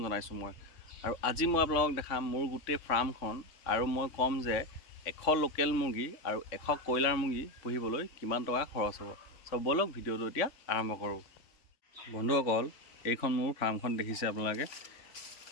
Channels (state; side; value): late; right; 3.5 ms